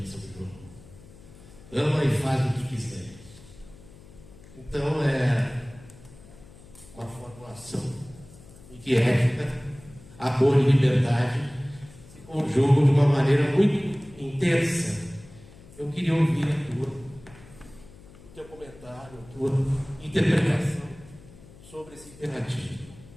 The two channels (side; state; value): left; noise; hum, 21 dB below the sound